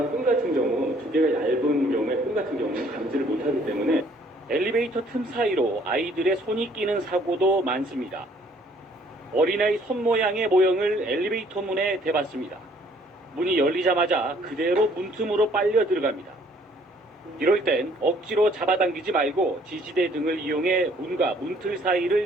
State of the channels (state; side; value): normal; both; correlation 0.61